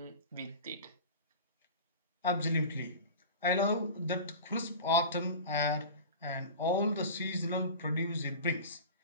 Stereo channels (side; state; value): both; inverted; correlation -0.33